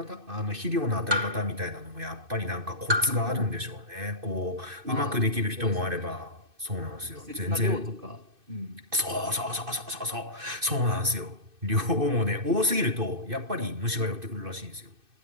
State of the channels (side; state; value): left; late; 2.6 ms